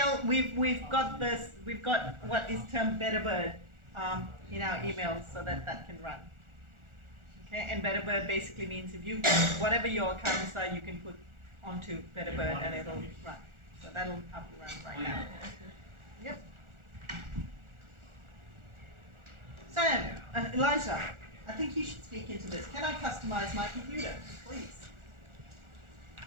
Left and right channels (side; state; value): left; late; 1.4 ms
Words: we've got this. We've got what is termed Betterbird in our emails, so that can run. Okay, and Betterbird basically means if you whatever your accounts are, you can put onto Betterbird and it'll run. So that'll up and run right now. Yep. Sam, Elijah, I think you should speak into this. Can I customize my computer, please?